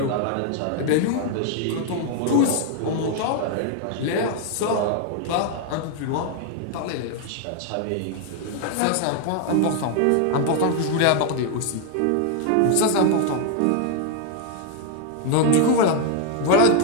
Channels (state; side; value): different; both; correlation 0.00